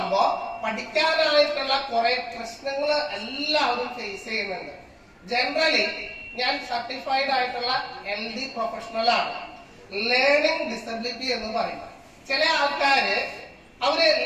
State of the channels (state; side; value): identical; both; correlation 1.00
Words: പഠിക്കാനായിട്ടുള്ള കുറെ പ്രശ്നങ്ങൾ എല്ലാവരും ഫേസ് ചെയ്യുന്നുണ്ട്. ജനറലി ഞാൻ സർട്ടിഫൈഡ് ആയിട്ടുള്ള LD പ്രൊഫഷണൽ ആണ്. ലേണിംഗ് ഡിസബിലിറ്റി എന്ന് പറയും. ചില ആൾക്കാര് അവര്